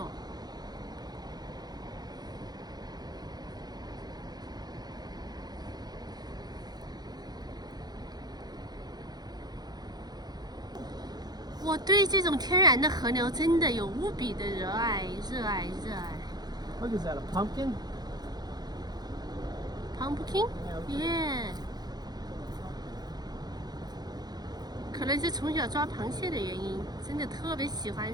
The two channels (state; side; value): late; left; 0.19 ms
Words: 我对这种天然的河流真的有无比的热爱。What is that? A pumpkin? Pumpkin? Yeah. 可能是从小抓螃蟹的原因，真的特别喜欢